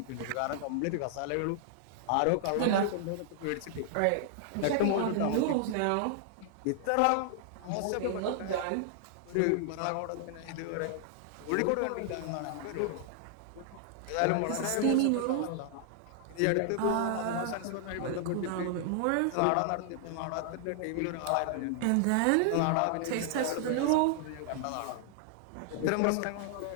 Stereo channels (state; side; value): different; both; correlation 0.00